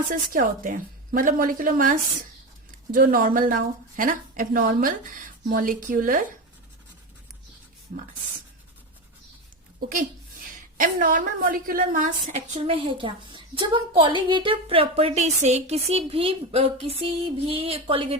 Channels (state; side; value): normal; both; correlation 0.19